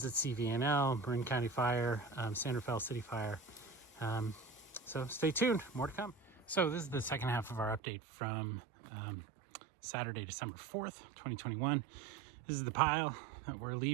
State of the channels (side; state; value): left; drops out; at 7.8 s